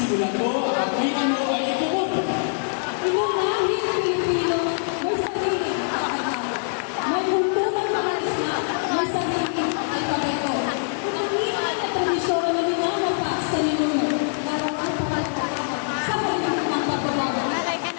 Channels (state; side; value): silent; right; digital silence